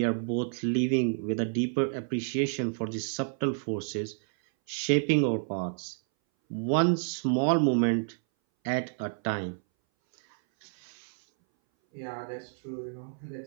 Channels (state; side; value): silent; left; 58 dB below the other